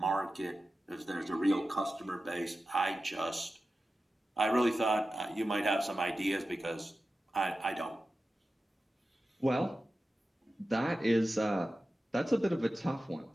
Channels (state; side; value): normal; both; correlation 0.94